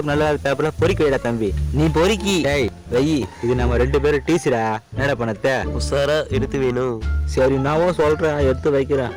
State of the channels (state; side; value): identical; both; correlation 1.00